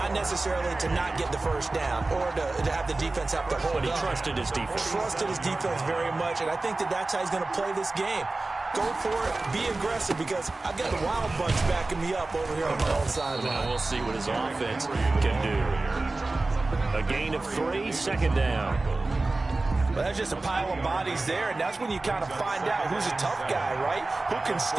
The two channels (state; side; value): quieter; left; 3.2 dB